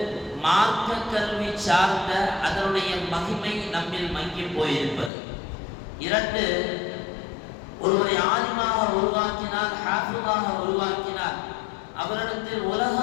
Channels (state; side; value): drops out; right; at 5.1 s